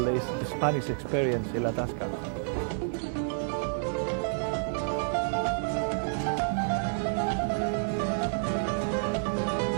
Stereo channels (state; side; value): silent; left; 58 dB below the other